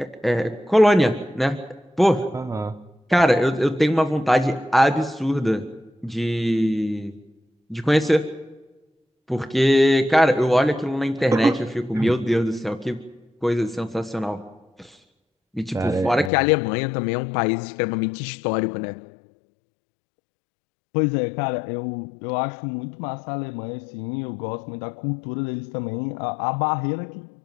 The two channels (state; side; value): drops out; right; at 16.3 s